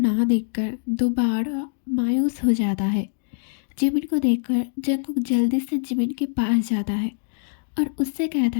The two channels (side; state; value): right; silent; digital silence